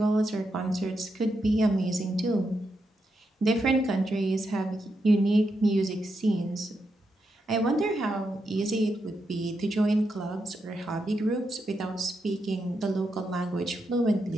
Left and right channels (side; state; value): both; normal; correlation 0.84